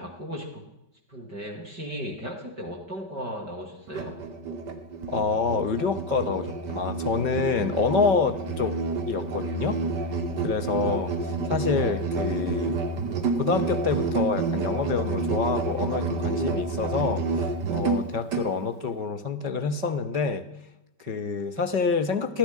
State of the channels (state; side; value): late; left; 5.2 ms